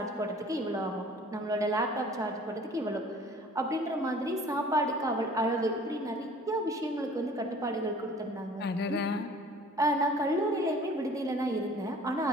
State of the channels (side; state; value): both; normal; correlation 0.49